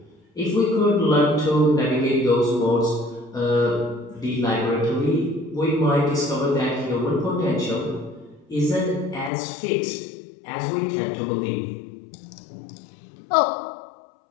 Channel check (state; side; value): drops out; right; at 9.3 s